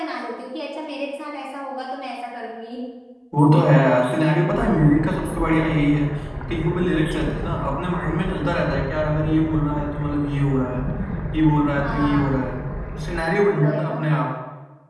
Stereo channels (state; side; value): identical; both; correlation 1.00